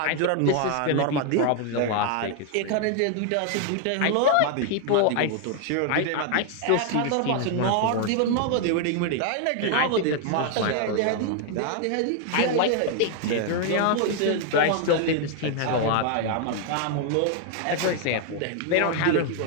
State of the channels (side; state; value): both; different; correlation 0.00